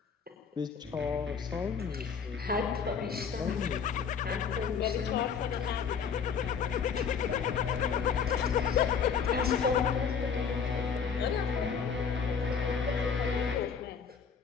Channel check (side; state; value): right; quieter; 6.5 dB